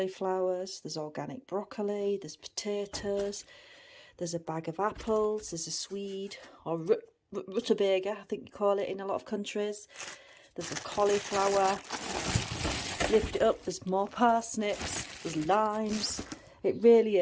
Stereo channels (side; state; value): both; identical; correlation 1.00